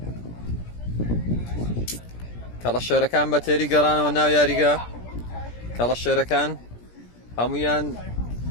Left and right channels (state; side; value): late; right; 17 ms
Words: کەڵە شێرەکان بە تێری گەڕانەوە ناو یاریگا کەڵە شێرەکان هەمویان